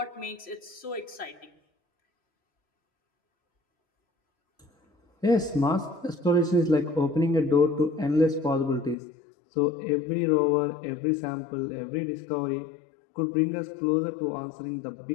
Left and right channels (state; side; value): drops out; right; at 9.0 s